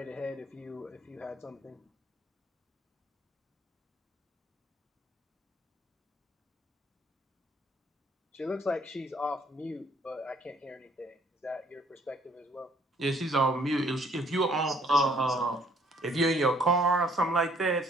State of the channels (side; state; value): both; normal; correlation 0.61